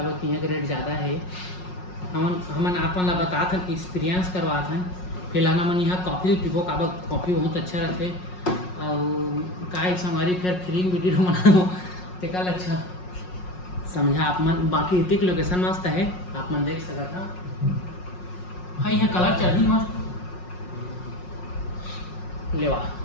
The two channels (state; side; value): late; right; 5.5 ms